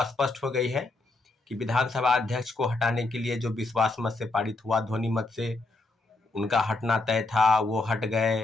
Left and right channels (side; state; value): right; quieter; 3.1 dB